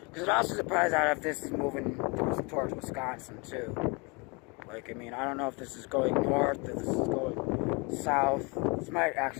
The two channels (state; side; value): quieter; right; 29.7 dB